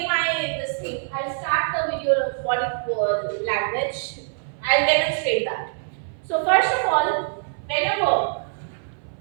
this thing. I'll start the video of body language. I'll demonstrate that. So first of all, whenever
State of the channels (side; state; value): left; silent; 62 dB below the other